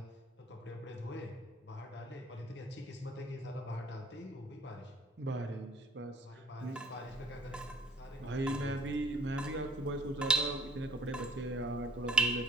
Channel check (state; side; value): normal; both; correlation 0.52